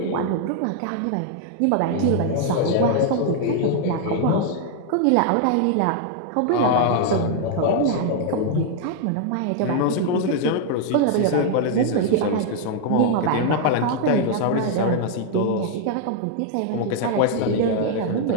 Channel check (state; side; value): different; both; correlation 0.00